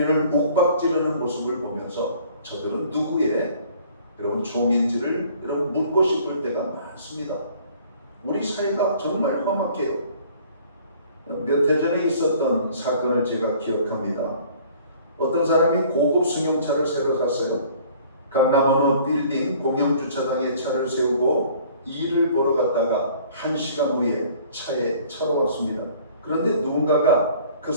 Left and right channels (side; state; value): both; inverted; correlation -0.53